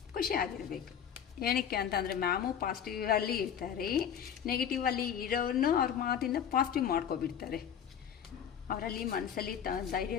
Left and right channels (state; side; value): quieter; right; 8.5 dB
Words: ಖುಷಿ ಆಗಿರಬೇಕು. ಏನಕ್ಕೆ ಅಂತಂದರೆ ಮ್ಯಾಮು ಪಾಸಿಟಿವಲ್ಲಿ ಇರ್ತಾರೆ, ನೆಗೆಟಿವಲ್ಲಿ ಇರೋರನ್ನು ಅವ್ರ ಮಾತಿಂದ ಪಾಸಿಟಿವ್ ಮಾಡ್ಕೊಬಿಡ್ತಾರೆ. ಅವರಲ್ಲಿ ಮನಸ್ಸಲ್ಲಿ